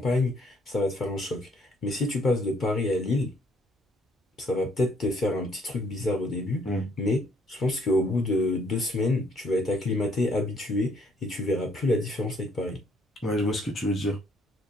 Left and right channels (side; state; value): both; normal; correlation 0.66